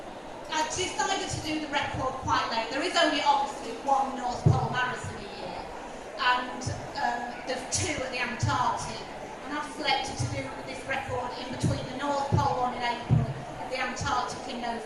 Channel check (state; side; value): identical; both; correlation 1.00